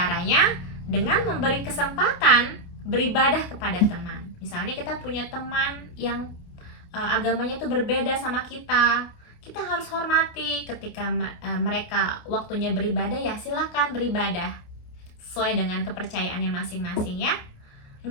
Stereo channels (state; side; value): late; right; 28 ms